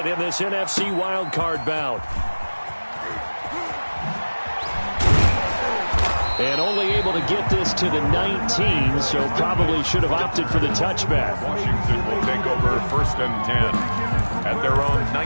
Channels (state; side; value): inverted; both; correlation -1.00